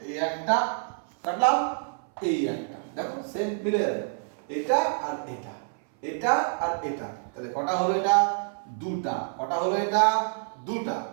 এই একটা কাটলাম, এই একটা, দেখো সেম মিলে যাবে। এটা আর এটা, এটা আর এটা। তাহলে কটা হলো? এটা 2টা। কটা হলো? এটা 2টা।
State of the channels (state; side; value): silent; left; 58 dB below the other